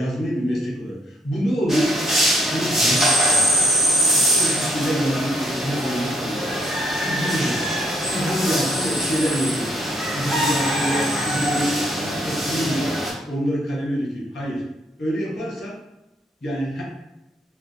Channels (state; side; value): normal; both; correlation 0.70